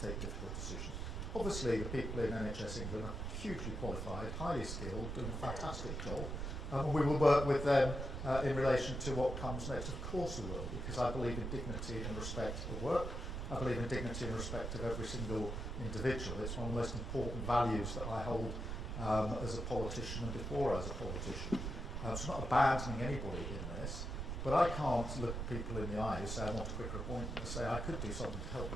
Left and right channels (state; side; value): noise; right; rumble, 4 dB below the sound